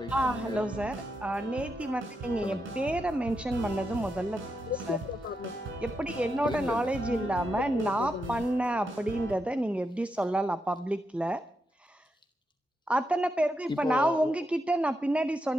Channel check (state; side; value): normal; both; correlation 0.84